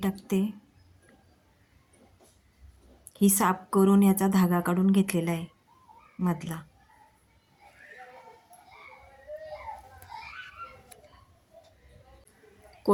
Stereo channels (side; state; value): both; identical; correlation 1.00